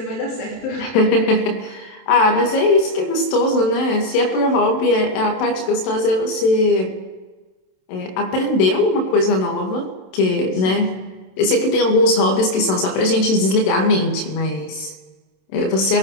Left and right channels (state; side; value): late; right; 27 ms